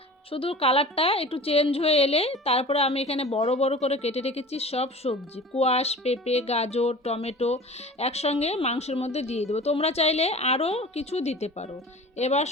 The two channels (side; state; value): both; normal; correlation 0.40